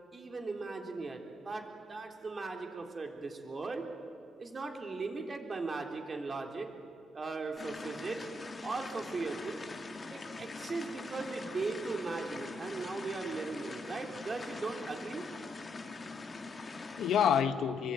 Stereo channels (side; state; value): both; normal; correlation 0.76